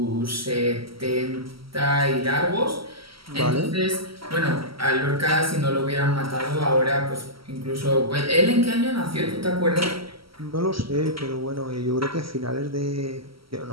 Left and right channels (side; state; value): left; late; 0.75 ms